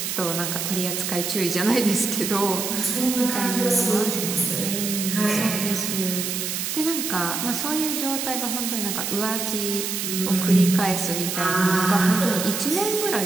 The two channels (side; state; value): right; noise; hiss, 3 dB below the sound